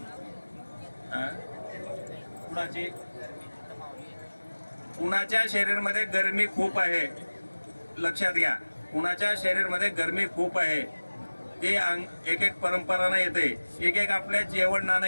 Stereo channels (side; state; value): both; inverted; correlation -1.00